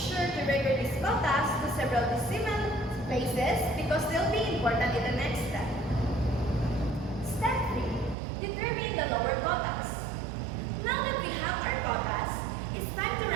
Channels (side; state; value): left; drops out; at 8.2 s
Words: to record these quotas to several decimal places because they'll be important in the next step. Step 3. Determine the lower quotas. Now that we have our quotas, it's time to